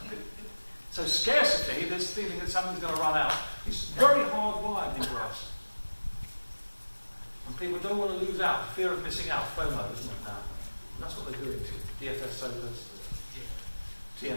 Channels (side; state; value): both; inverted; correlation -1.00